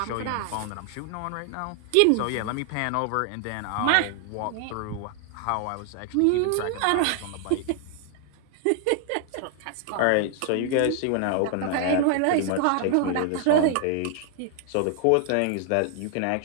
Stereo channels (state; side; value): different; both; correlation 0.00